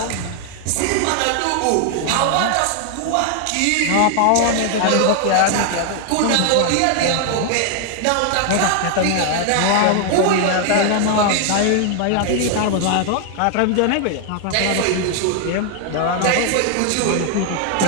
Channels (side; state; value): both; different; correlation 0.00